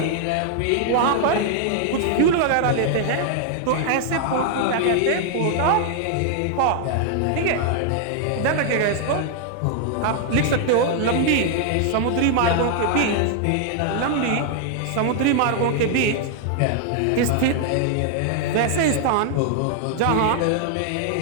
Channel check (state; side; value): different; both; correlation 0.00